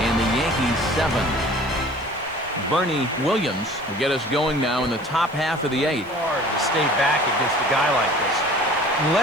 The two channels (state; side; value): noise; right; hiss, 29 dB below the sound